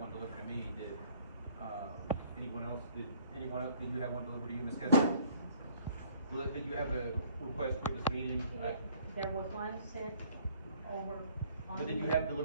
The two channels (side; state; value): both; inverted; correlation -0.58